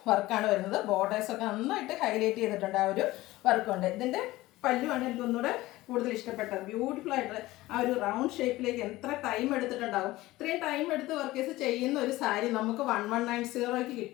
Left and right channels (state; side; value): quieter; right; 17.9 dB